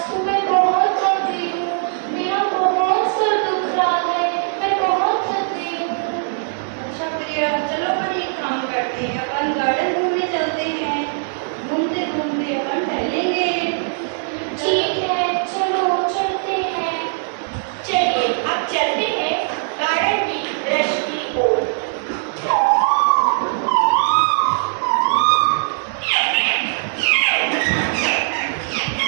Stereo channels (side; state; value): left; silent; digital silence